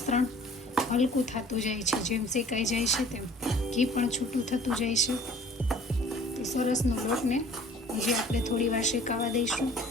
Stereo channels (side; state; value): both; normal; correlation 0.50